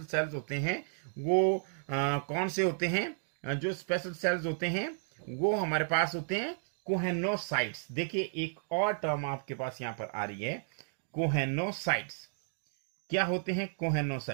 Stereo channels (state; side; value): silent; left; digital silence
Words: सेल्स होते हैं वो कौन से होते हैं? जो स्पेशल सेल्स होते हैं वो हमारे पास होते हैं कोहेनोसाइट्स. देखिए एक और टर्म आपके पास यहां पर आ रही है, कोहेनोसाइट्स. क्या होते हैं